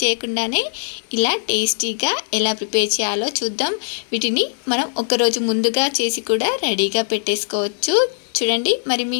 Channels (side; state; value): right; silent; digital silence